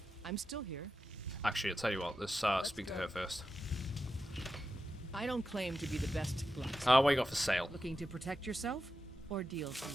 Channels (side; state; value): both; normal; correlation 0.90